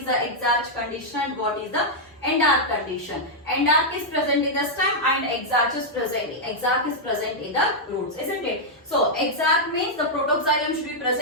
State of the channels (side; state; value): both; normal; correlation -0.05